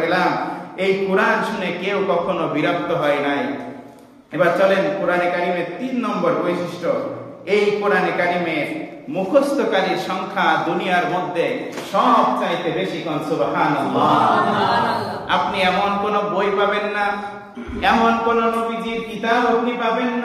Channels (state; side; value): identical; both; correlation 1.00